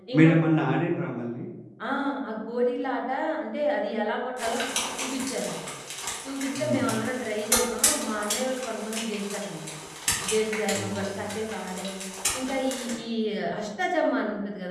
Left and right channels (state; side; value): identical; both; correlation 1.00